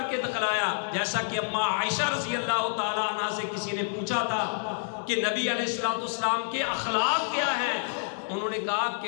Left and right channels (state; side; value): silent; right; 59 dB below the other